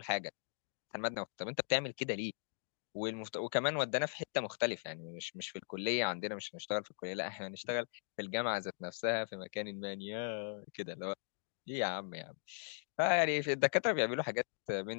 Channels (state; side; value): silent; right; digital silence